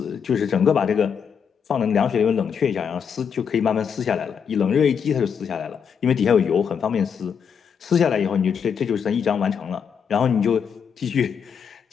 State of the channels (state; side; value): quieter; right; 7.0 dB